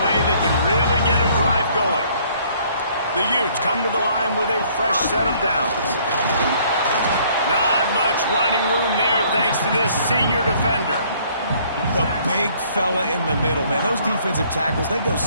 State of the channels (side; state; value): both; inverted; correlation -0.61